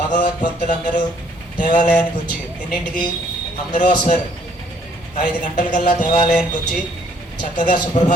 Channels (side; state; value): both; normal; correlation 0.64